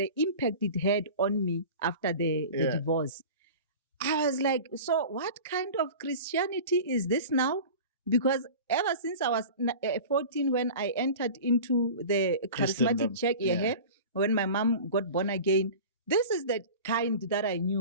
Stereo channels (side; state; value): both; inverted; correlation -0.36